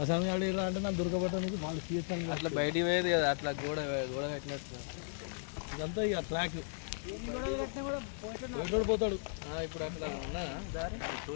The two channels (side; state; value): right; silent; digital silence